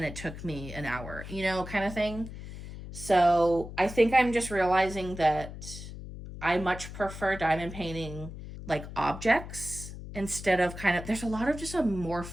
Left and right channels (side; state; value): left; noise; hum, 11 dB below the sound